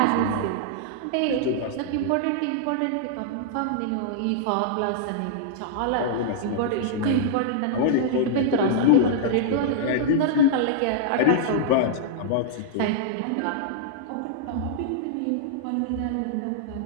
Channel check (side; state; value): both; different; correlation -0.02